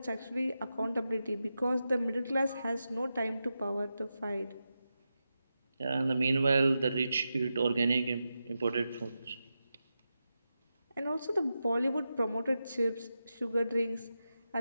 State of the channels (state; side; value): inverted; both; correlation -0.90